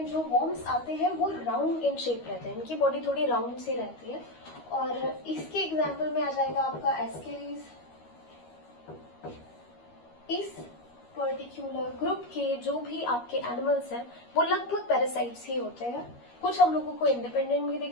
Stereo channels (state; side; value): late; right; 13 ms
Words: जो वॉर्म्स आते हैं वो राउंड इन शेप रहते हैं, इनकी बॉडी थोड़ी राउंड सी रहती है। और इसके एग्जाम्पल में आ जाएगा आपका एस्केरीज। इस पर्टिकुलर ग्रुप के जो भी आपके एनिमल्स हैं वो लगभग पैरासाइट्स ही होते हैं। कुछ हम लोगों को इंडिपेंडेंट भी